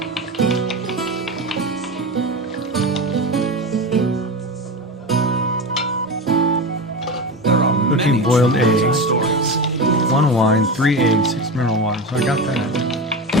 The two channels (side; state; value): both; normal; correlation 0.23